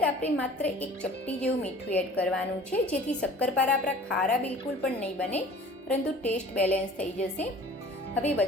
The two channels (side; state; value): both; normal; correlation 0.46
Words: આપણે માત્ર 1 ચપટી જેવું મીઠું એડ કરવાનું છે, જેથી શક્કરપારા આપણા ખારા બિલકુલ પણ નહીં બને, પરંતુ ટેસ્ટ બેલેન્સ થઈ જશે. હવે